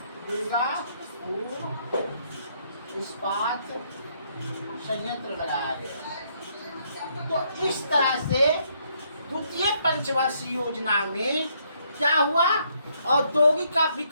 दुर्गापुर इस्पात संयंत्र लगाया गया। तो इस तरह से द्वितीय पंचवर्षीय योजना में क्या हुआ, औद्योगिक का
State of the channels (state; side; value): inverted; both; correlation -0.71